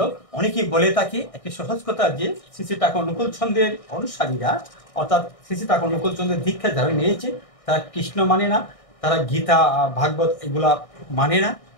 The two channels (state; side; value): late; right; 1.6 ms